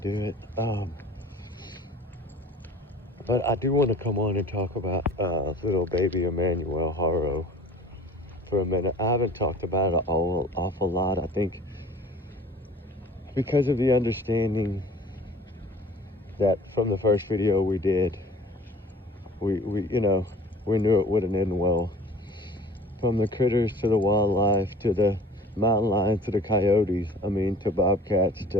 it. But I do want to come on and talk about little baby Emmanuel Haro for a minute. I haven't talked about it an awful lot. I think because of the understanding that from the first video we did, we knew it wouldn't end well. From the critters to the wildlife to the mountain lions to the coyotes, to bobcats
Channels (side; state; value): both; normal; correlation 0.46